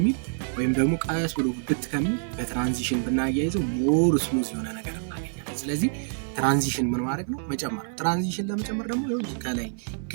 ወይም ደግሞ ቀስ ብሎ ብት ከሚል በትራንዚሽን ብናያይዘው ሞር ስሙዝ የሆነ ነገር እናገኛለን። ስለዚህ ትራንዚሽን ምን ማድረግ ነው? መጨመር። ትራንዚሽን ለመጨመር ደግሞ ከላይ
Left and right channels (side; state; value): left; silent; digital silence